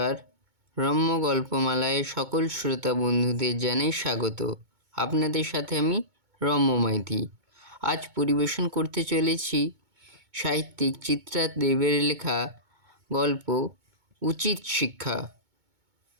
রম্য গল্পমালায় সকল শ্রোতা বন্ধুদের জানাই স্বাগত। আপনাদের সাথে আমি রম্য মাইতি। আজ পরিবেশন করতে চলেছি সাহিত্যিক চিত্রা দেবের লেখা গল্প উচিত শিক্ষা।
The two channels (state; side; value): late; left; 2.2 ms